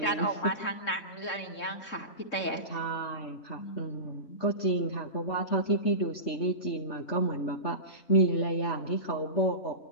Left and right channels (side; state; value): right; late; 3.7 ms